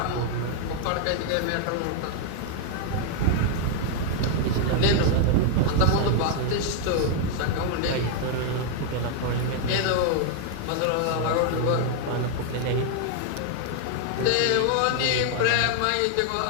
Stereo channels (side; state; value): both; different; correlation 0.00